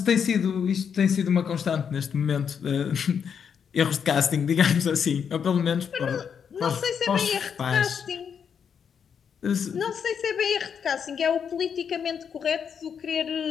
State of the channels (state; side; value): quieter; right; 7.2 dB